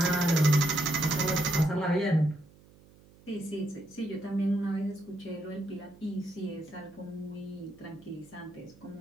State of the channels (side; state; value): right; noise; hum, 26 dB below the sound